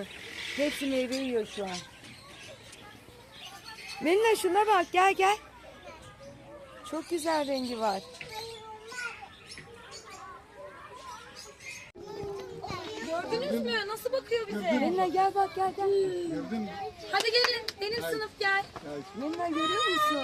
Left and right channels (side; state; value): both; identical; correlation 1.00